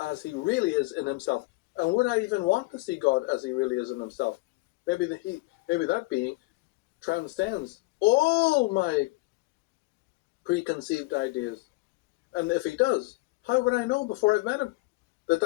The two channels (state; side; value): quieter; right; 23.4 dB